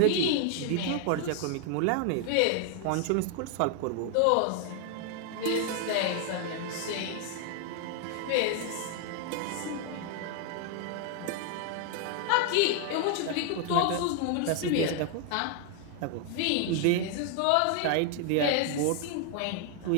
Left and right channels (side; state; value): both; different; correlation 0.00